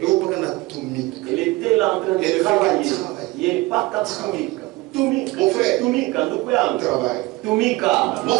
mpaka anatumika. Elle était là en train Elle de fait travailler. qu'elle travaille. Yeye mpaka kutumika. Tumika. Mon frère. Tumika ndugu yangu. Travail. Tumika. Mon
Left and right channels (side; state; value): left; quieter; 21.7 dB